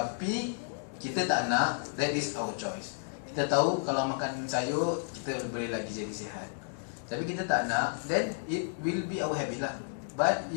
kita tak nak, that is our choice. Kita tahu kalau makan sayur kita boleh lagi jadi sihat, tapi kita tak nak, then it will be our habit lah. But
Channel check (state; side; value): silent; right; digital silence